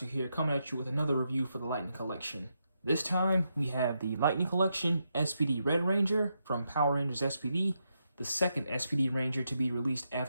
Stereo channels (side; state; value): both; inverted; correlation -0.83